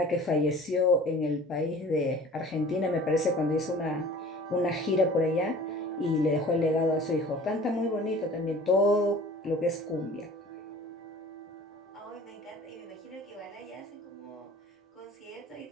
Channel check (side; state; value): both; normal; correlation 0.45